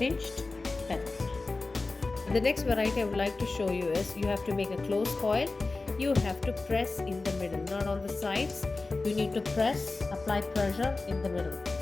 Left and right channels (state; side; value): quieter; right; 3.5 dB